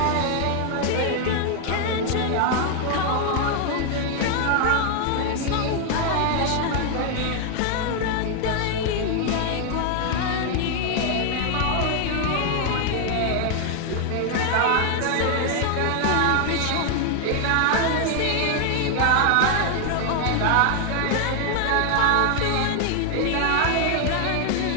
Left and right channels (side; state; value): both; different; correlation 0.01